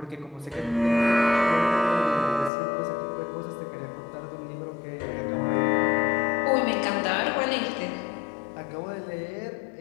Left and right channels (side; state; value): right; drops out; at 2.5 s